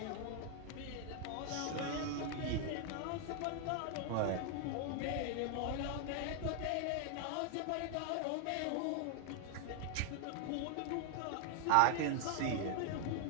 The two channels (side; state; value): both; different; correlation 0.00